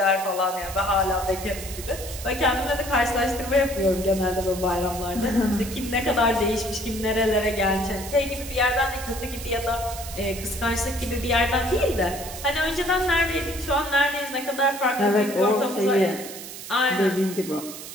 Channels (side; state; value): right; noise; hiss, 11 dB below the sound